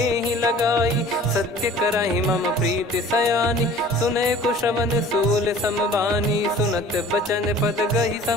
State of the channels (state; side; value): normal; both; correlation 0.47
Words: लगाई। सत्य करहि मम प्रीति सयानी, सुनय को श्रवण सूल समबानी। सुनत बचन पद गहि